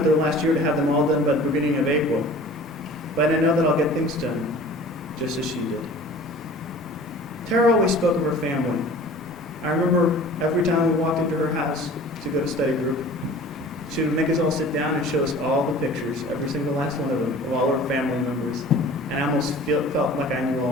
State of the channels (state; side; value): normal; both; correlation 0.44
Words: her last year to have them all done by the beginning of April. But I know that I'll get things done, just as she did. Tara always spoke of her family. I remember every time we walked into her house to go to study group, she would make us all sit down and show us all the pictures, every single last one of them, of all our family members. And I almost felt like I knew